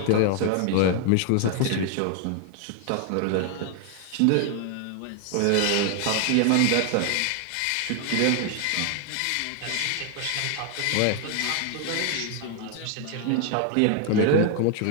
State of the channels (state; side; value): different; both; correlation 0.00